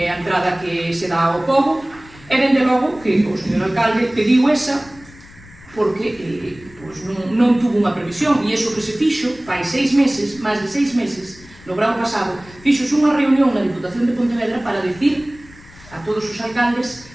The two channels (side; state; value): left; noise; rumble, 22 dB below the sound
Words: é a entrada que se dá ao pobo, e dende logo que o señor alcalde pediu esa, porque non tuvo unha previsión, e iso que se fixo fai 6 meses, máis de 6 meses, no verán pasado, fixos unha reunión na Diputación de Pontevedra para dicir a todos os alcaldes